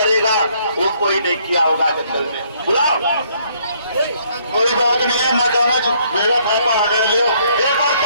वो कोई नहीं किया होगा जंगल में। बुलाओ, कोई बात नहीं है, मैं कहूँगा मेरा पापा आ गए, लियो एक बार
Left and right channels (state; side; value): inverted; both; correlation -0.67